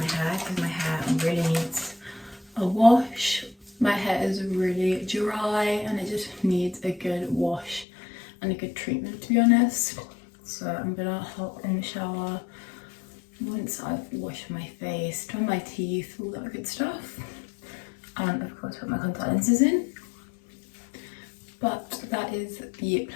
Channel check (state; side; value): drops out; right; at 7.9 s